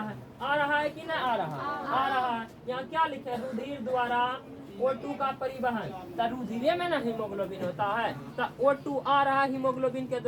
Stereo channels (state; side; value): identical; both; correlation 1.00